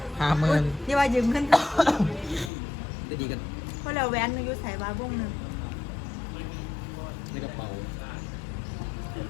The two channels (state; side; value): drops out; right; at 2.5 s